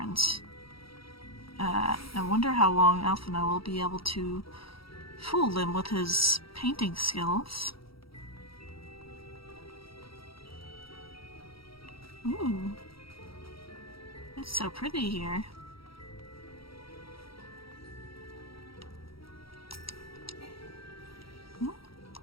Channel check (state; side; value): late; right; 0.75 ms